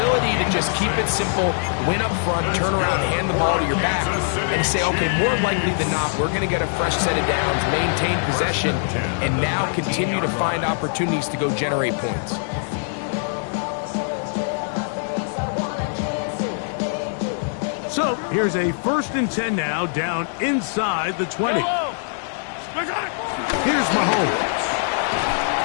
to just keep it simple, win up front, turn around, hand the ball to your back, and say, okay, more likely than not, we're going to get a fresh set of downs, maintain possession, and now continue to find opportunities to go generate points. So, here's a 1st and 10 now, down inside the 20. Here's Mahomes.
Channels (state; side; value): silent; right; digital silence